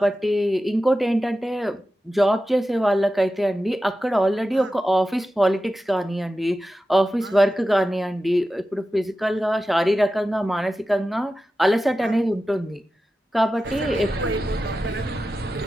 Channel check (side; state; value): both; normal; correlation 0.93